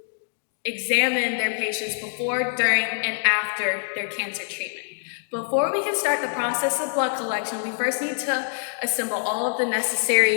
examine their patients before, during, and after their cancer treatment. Before we can start the process of blood collection, we first need to assemble all of the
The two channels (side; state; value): right; silent; digital silence